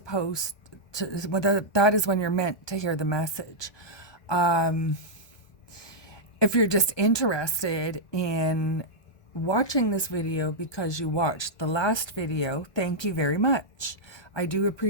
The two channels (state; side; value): late; right; 1.2 ms